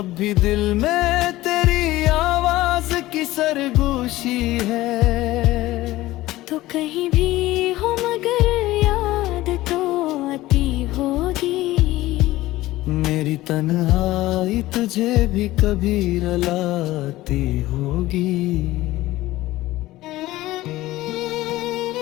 भी दिल में तेरी आवाज की सरगोशी है। तो कहीं भी हो मगर याद तो आती होगी। मेरी तन्हाई तुझे भी कभी रुलाती होगी।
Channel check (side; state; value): right; quieter; 17.1 dB